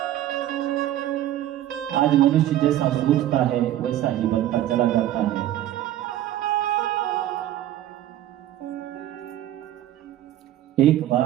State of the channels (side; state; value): left; quieter; 12.9 dB